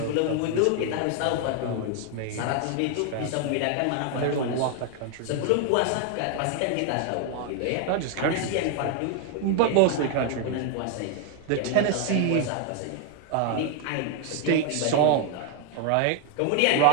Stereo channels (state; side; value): different; both; correlation 0.00